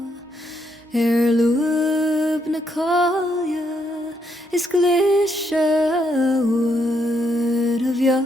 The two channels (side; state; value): both; normal; correlation 0.76